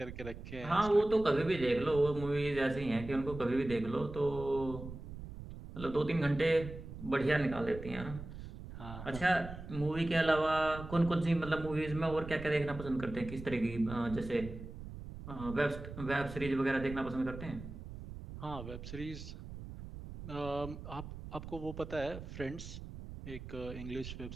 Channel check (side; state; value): right; noise; rumble, 11 dB below the sound